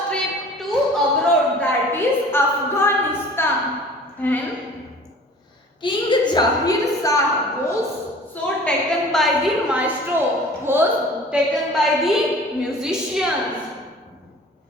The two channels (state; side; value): normal; both; correlation 0.46